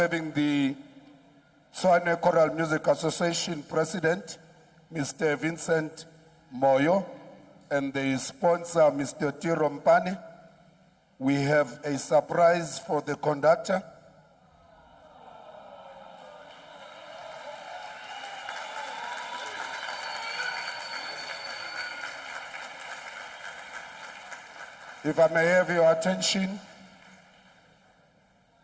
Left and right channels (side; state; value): both; identical; correlation 1.00